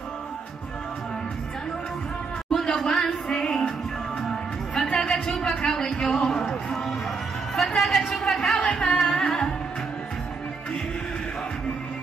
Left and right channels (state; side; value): quieter; left; 4.7 dB